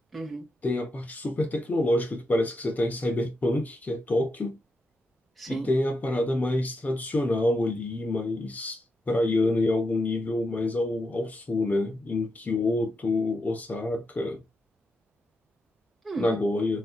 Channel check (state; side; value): normal; both; correlation 0.84